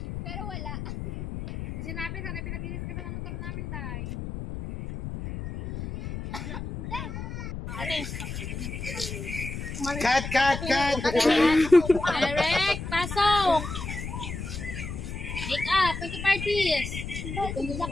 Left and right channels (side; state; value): left; noise; rumble, 7 dB below the sound